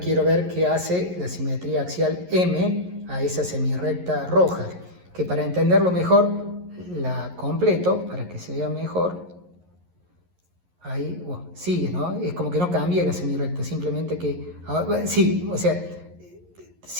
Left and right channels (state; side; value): late; left; 11 ms